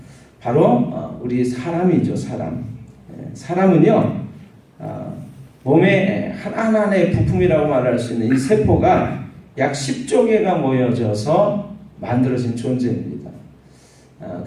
바로 우리 사람이죠. 사람은요, 몸의 하나하나의 부품이라고 말할 수 있는 이 세포가 약 10조 개가 모여져서 만들어진 존재입니다.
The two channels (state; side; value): identical; both; correlation 1.00